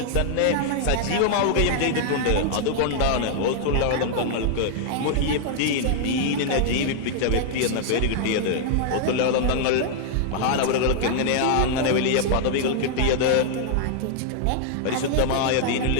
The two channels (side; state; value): both; different; correlation -0.01